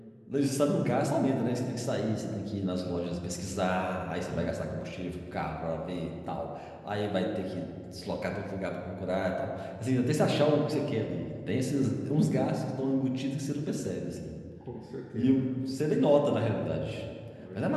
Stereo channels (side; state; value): both; identical; correlation 1.00